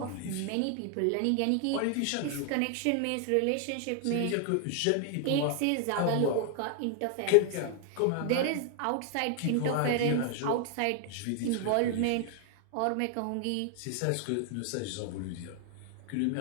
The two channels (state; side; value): different; both; correlation 0.00